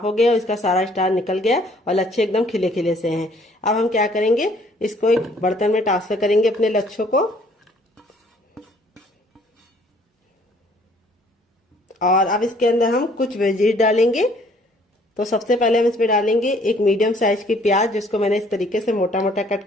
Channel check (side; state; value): both; normal; correlation 0.60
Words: हो गए और इसका सारा स्टार्च निकल गया और लच्छे एकदम खिले खिले से हैं। अब हम क्या करेंगे, इसको एक बर्तन में ट्रांसफर करेंगे अपने लच्छों को। और अब इसके अंदर हम कुछ वेजीज डालेंगे। तो सबसे पहले हम इसमें डालेंगे एक मीडियम साइज की प्याज, जिसको मैंने इस तरीके से मोटा मोटा कट